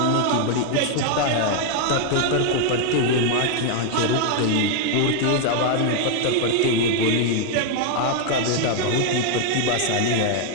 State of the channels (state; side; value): different; both; correlation 0.00